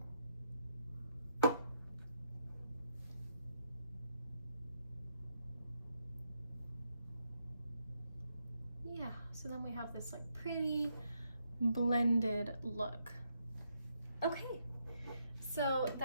Yeah, so then we have this like pretty blended look. Okay, so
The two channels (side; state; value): both; inverted; correlation -0.78